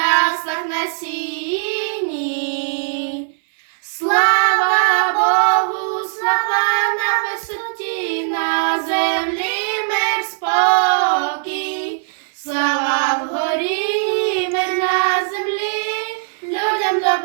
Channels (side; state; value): left; silent; digital silence